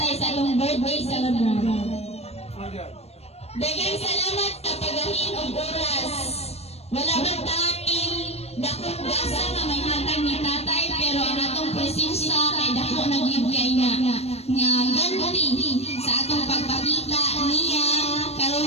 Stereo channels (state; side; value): late; right; 0.30 ms